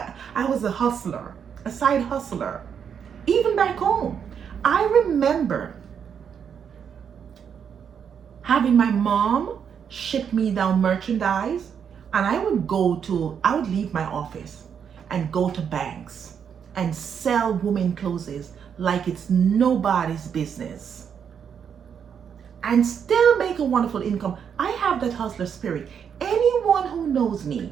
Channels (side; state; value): left; quieter; 7.6 dB